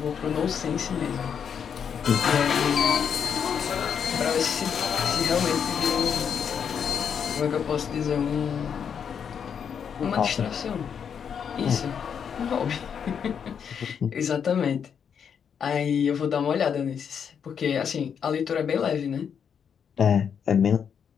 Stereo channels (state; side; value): quieter; right; 7.4 dB